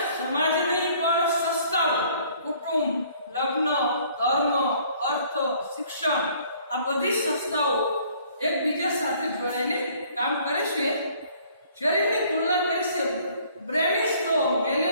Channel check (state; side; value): inverted; both; correlation -0.58